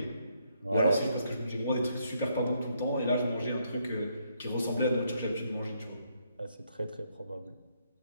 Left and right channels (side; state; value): both; inverted; correlation -0.74